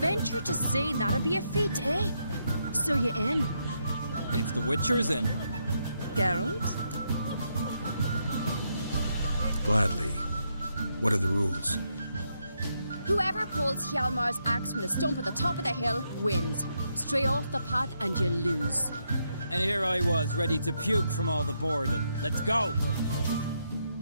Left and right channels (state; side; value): inverted; both; correlation -0.79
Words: to say that'd be a feat, eh? So you in? If the Witcher's in. Geralt? Gladly. What are the rules? Whoever pulls Hjalmar's axe from the stump at the top of the hill wins. Stray off the path and you lose. And here I was, ready to puke from all the boredom. Let's go!